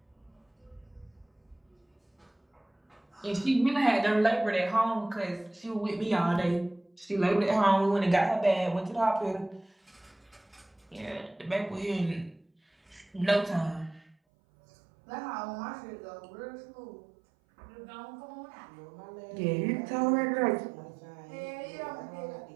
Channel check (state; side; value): drops out; left; at 14.2 s